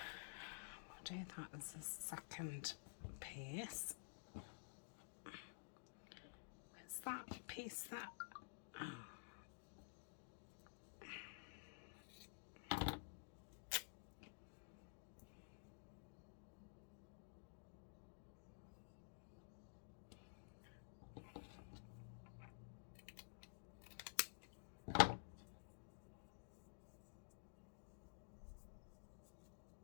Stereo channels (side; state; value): right; silent; digital silence